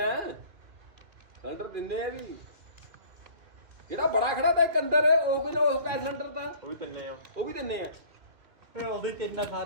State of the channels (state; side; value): late; left; 2.6 ms